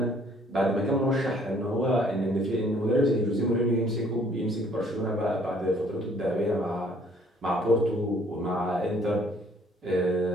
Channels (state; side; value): normal; both; correlation 0.61